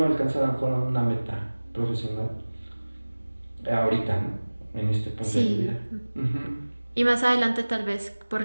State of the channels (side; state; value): both; inverted; correlation -1.00